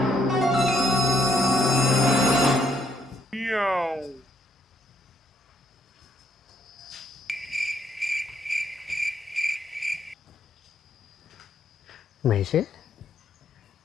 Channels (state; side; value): normal; both; correlation 0.69